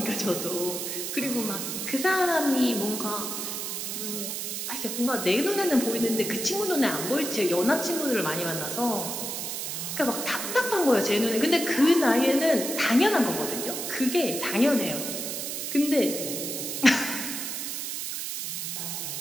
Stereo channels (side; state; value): right; noise; hiss, 4 dB below the sound